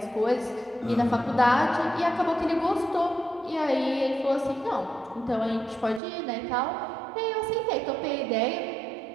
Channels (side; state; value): left; drops out; at 6.0 s